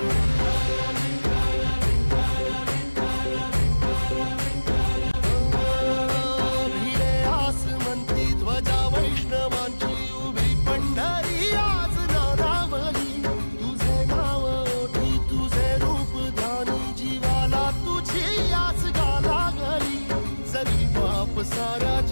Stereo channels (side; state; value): both; inverted; correlation -1.00